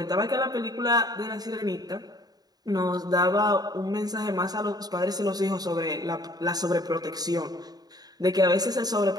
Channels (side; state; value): left; late; 0.19 ms